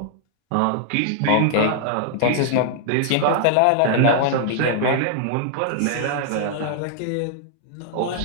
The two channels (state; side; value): different; both; correlation -0.01